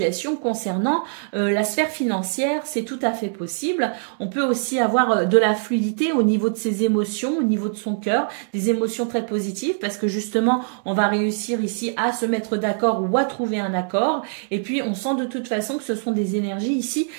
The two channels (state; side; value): silent; left; digital silence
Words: concernant la sphère financière. C'est tout à fait possible. On peut aussi avoir de la fluidité au niveau de ses émotions, au niveau de son cœur, des émotions très positives parce que justement, on va réussir ici à se mettre d'accord ou à trouver un accord. Et puis, on sent de toute façon que ce sont des énergies ici